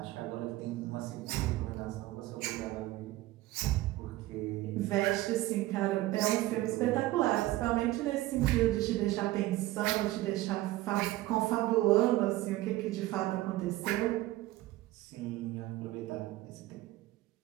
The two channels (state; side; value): quieter; left; 17.0 dB